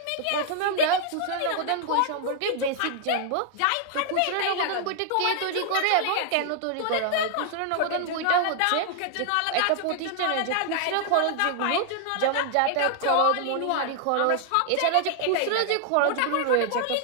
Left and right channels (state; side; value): different; both; correlation 0.00